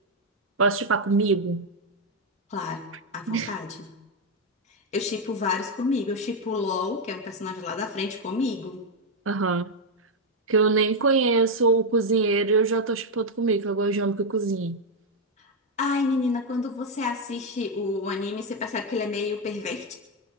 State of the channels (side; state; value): both; normal; correlation 0.03